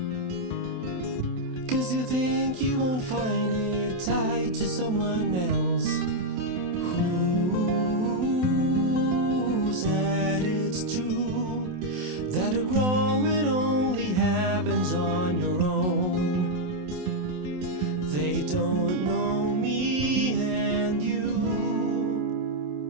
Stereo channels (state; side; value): late; left; 27 ms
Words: 'cause you think you won't find it tied to someone else. Who said it's true that a growing only happens on your own? They don't know me and you.